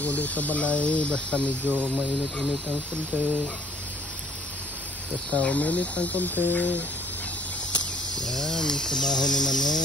uli sa balay, basta medyo mainit-init ang konti. Basta uminit ang konti. Yan, trabaho ni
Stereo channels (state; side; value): normal; both; correlation 0.60